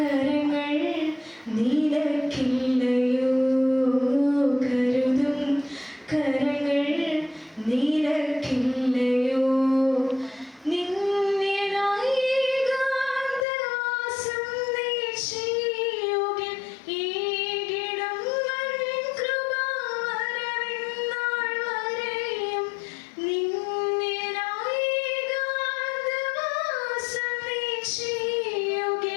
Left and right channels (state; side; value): drops out; right; at 13.5 s